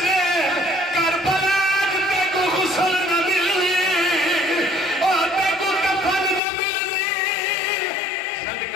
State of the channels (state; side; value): drops out; right; at 6.4 s